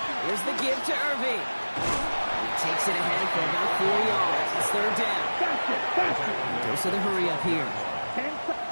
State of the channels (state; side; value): inverted; both; correlation -1.00